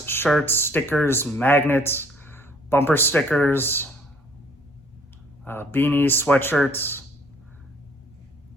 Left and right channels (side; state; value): both; normal; correlation 0.60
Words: shirts, stickers, magnets, bumper stickers, beanies, sweatshirts,